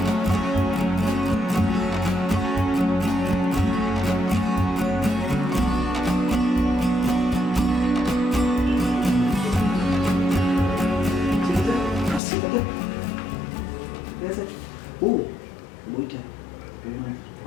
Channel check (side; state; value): right; drops out; at 12.2 s